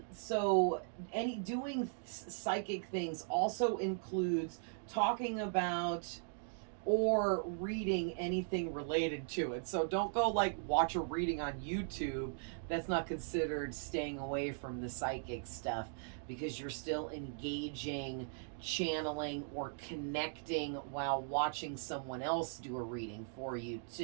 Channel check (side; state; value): left; silent; digital silence